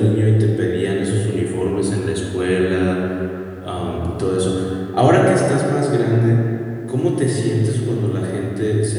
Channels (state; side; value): identical; both; correlation 1.00